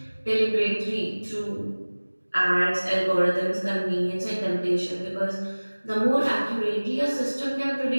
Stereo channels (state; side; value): inverted; both; correlation -1.00